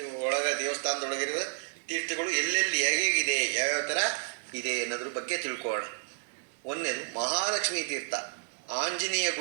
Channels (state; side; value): silent; left; 57 dB below the other